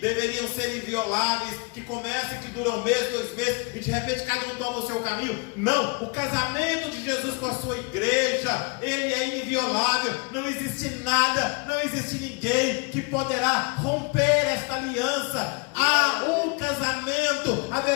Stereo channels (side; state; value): right; quieter; 31.6 dB